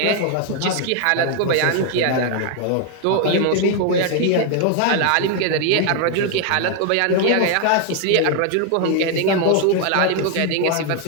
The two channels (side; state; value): both; different; correlation 0.00